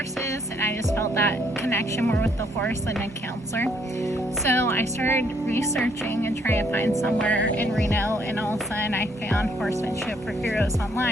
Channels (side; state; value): both; normal; correlation 0.68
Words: and I just felt that connection more with the horse than a counselor. So I started researching and trying to find somewhere in Reno, and all of a sudden I found Horsemanship for Heroes